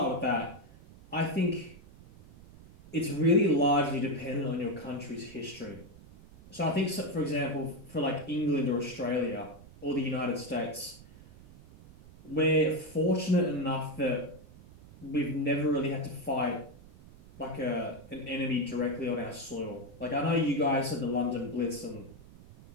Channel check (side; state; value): right; noise; rumble, 21 dB below the sound